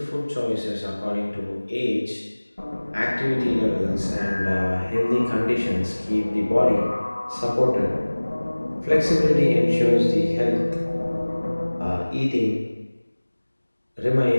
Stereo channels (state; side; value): inverted; both; correlation -1.00